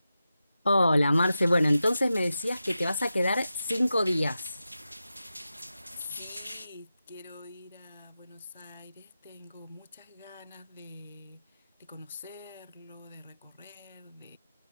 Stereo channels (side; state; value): both; inverted; correlation -0.92